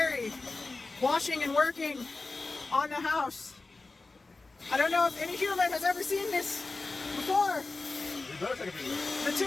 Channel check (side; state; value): right; quieter; 3.5 dB